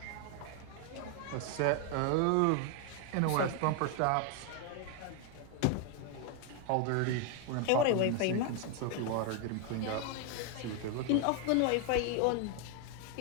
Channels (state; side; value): different; both; correlation 0.01